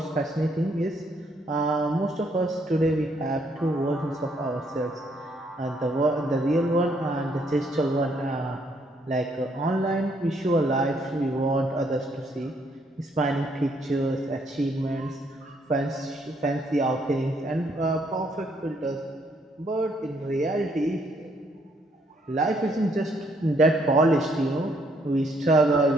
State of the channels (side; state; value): both; normal; correlation 0.70